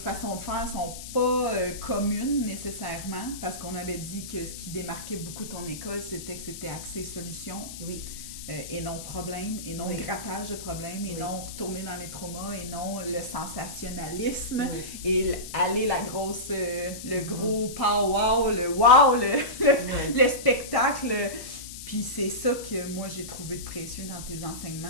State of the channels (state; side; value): noise; left; hiss, 11 dB below the sound